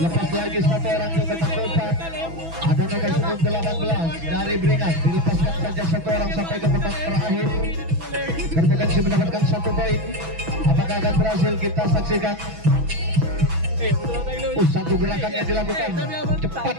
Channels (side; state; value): left; late; 6.1 ms